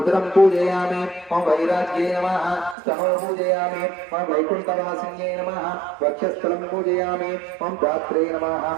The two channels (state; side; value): drops out; left; at 2.8 s